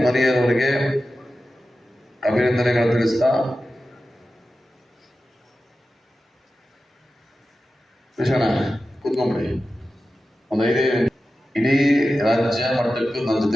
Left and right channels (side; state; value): both; normal; correlation 0.93